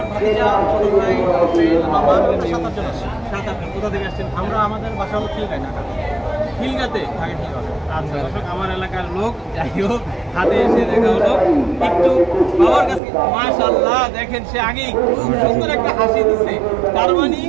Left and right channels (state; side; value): drops out; left; at 13.0 s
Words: ভাতিজা ছোট ভাই বাবা 7-8 জন আসছে। 7-8 কোথা থেকে আসছেন? আমরা আমাদের বাসা হলো খিলগাঁয়, ঢাকা। খিলগাঁতে? ঢাকা খিলগাঁও। আচ্ছা দর্শক, আমার এলাকার লোক, যাই হোক হাতে এসে দেখা হলো। একটু বাবার কাছে মাশাআল্লাহ দেখেন, সে আগেই খুব সুন্দর একটা হাসি দিচ্ছে, তার মানে